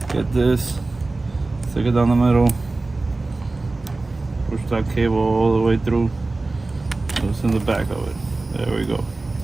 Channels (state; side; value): quieter; left; 3.3 dB